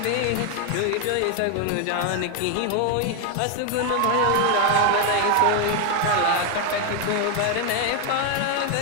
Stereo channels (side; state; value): both; different; correlation 0.01